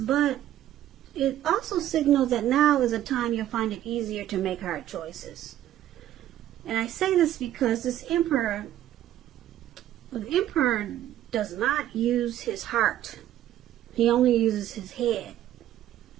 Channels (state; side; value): quieter; left; 12.5 dB